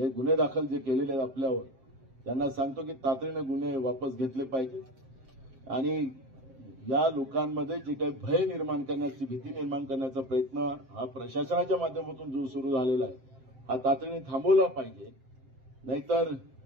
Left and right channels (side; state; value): left; late; 7.6 ms